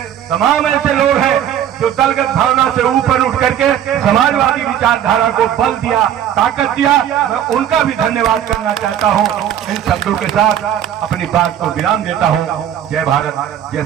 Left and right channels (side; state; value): left; quieter; 10.2 dB